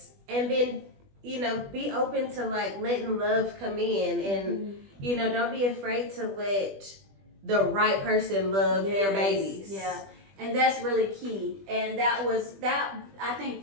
and then be open to like letting love come in, and don't be afraid to let the right person love your babies. Yeah. And that's really key. And I think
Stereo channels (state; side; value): late; left; 20 ms